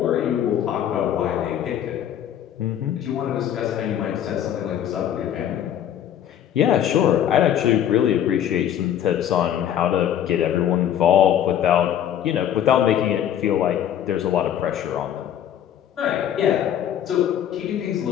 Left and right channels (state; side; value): quieter; right; 10.3 dB